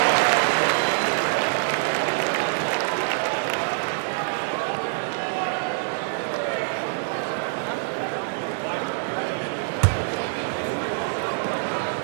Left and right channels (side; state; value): left; silent; digital silence